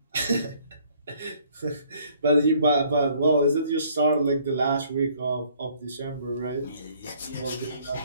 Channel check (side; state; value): both; inverted; correlation -0.62